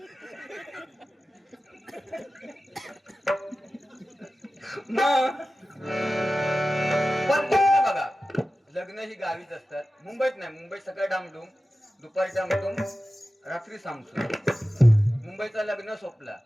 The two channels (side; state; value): both; normal; correlation 0.95